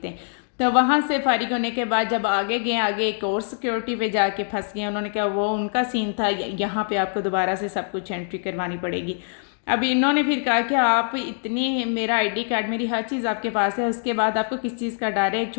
तो वहाँ से फारिग होने के बाद जब आगे गए, आगे एक और सिक्योरिटी पे जाके फंस गए। उन्होंने कहा वो उनका सीन था, यहाँ पे आपको दोबारा से सब कुछ एंट्री करवानी पड़ेगी। अब इन्होंने फिर कहा कि आप इतनी, मेरा आईडी कार्ड मेरी हर चीज़ आपके पास है, उसके बाद आपको किस चीज़ का डर है, एक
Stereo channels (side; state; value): right; silent; 63 dB below the other